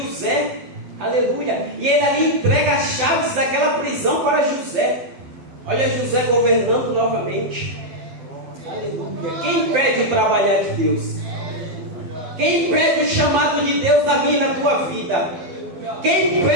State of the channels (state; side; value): late; left; 12 ms